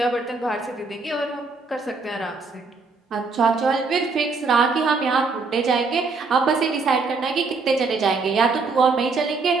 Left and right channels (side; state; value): left; quieter; 4.2 dB